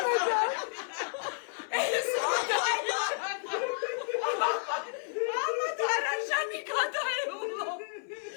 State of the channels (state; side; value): silent; right; 57 dB below the other